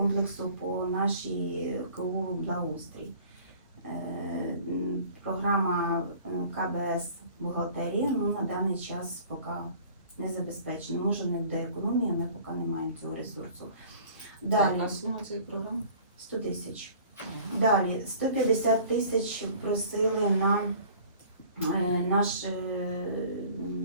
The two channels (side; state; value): both; inverted; correlation -0.48